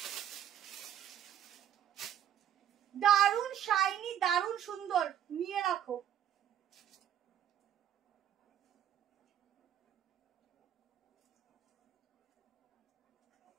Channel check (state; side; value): quieter; left; 10.3 dB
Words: দারুন শাইনি, দারুন সুন্দর, নিয়ে রাখো।